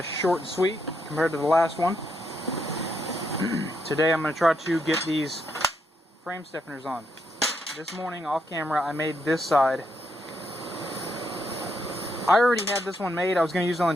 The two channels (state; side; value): normal; both; correlation 0.78